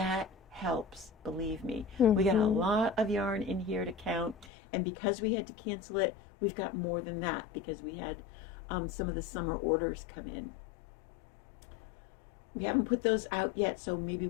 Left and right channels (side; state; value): right; drops out; at 4.5 s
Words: helps, believe me. We got a lot of yarn in here to count, and because we had to cancel it, we've got more than that because we had some of the summer orders come in. We haven't put those out yet, so maybe